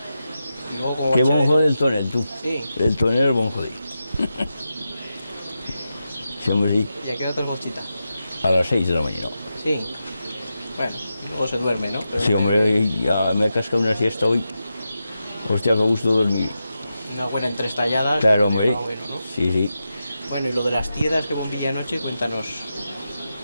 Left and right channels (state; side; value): inverted; both; correlation -0.89